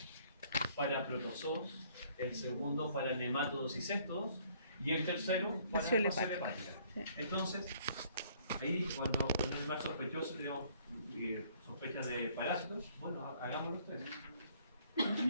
para protozoos, el segundo para nemátodos y céstodos, y el tercero para Fascia fascia hepática. hepática. Entonces, ahí cuando un animal sospechoso tenemos sospechas de parásitos, bueno, hagámoslo ustedes.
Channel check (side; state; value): both; inverted; correlation -0.61